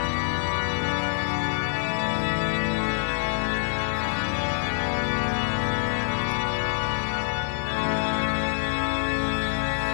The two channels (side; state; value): right; silent; digital silence